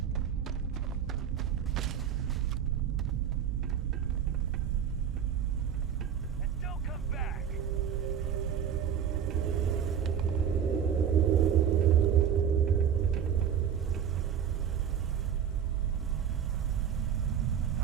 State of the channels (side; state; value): left; quieter; 8.4 dB